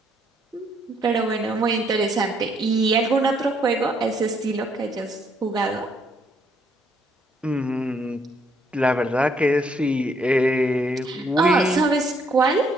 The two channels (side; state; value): both; normal; correlation 0.70